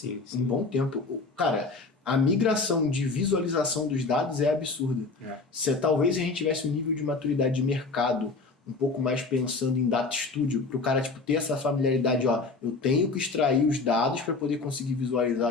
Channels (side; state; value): right; quieter; 3.9 dB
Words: Um bom tempo. Cara, a migração de visualização dos dados é absurda. Se talvez a gente tivesse um nível de maturidade de mercado um pouco mais pensando em Data Studio, para o cara tipo, ter essa familiaridade, ó, eu tenho que extrair os dados para poder conseguir